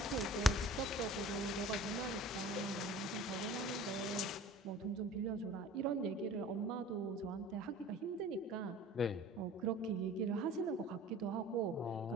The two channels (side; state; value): both; normal; correlation 0.45